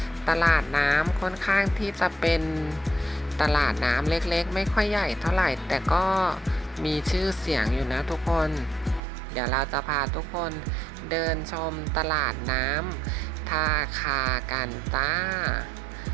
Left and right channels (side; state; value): left; drops out; at 9.0 s